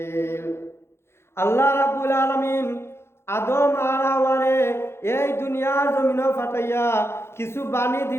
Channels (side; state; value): right; late; 0.12 ms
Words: আল্লাহ রাব্বুল আলামিন আদম আর হাওয়ারে এই দুনিয়ার জমিন ফাটাইয়া কিছু বাণী